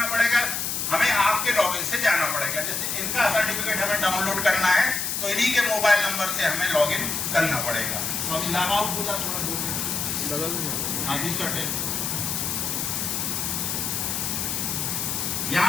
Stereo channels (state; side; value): noise; left; hiss, 1 dB below the sound